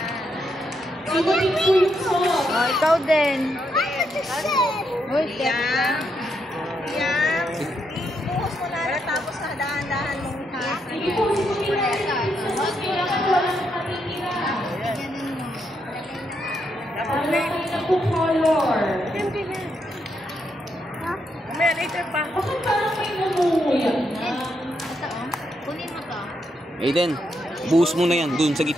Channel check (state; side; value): normal; both; correlation 0.79